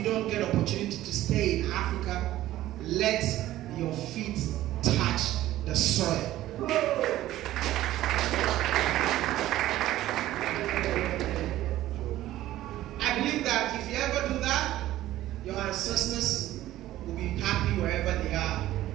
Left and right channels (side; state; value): left; quieter; 14.6 dB